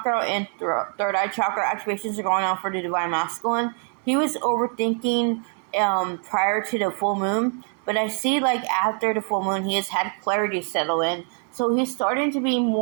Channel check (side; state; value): left; quieter; 39.6 dB